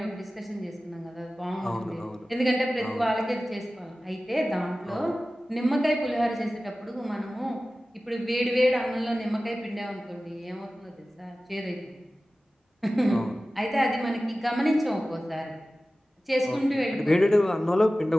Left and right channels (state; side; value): normal; both; correlation 0.96